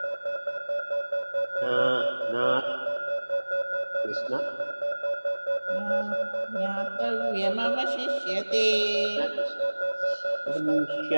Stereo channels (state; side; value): inverted; both; correlation -1.00